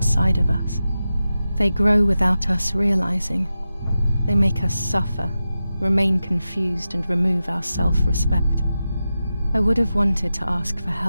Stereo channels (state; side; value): inverted; both; correlation -0.92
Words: of us. They grow without us realizing. They make us suffer, remain confused, and remove our self-respect. I would have wanted to ask for